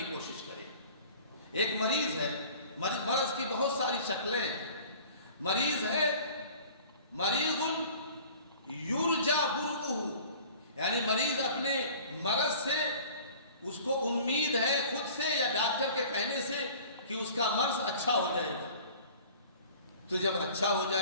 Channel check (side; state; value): both; inverted; correlation -0.46